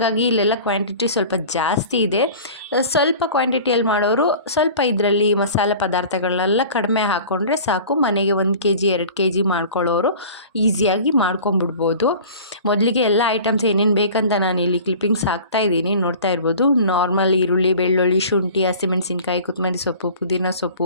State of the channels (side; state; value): both; inverted; correlation -0.42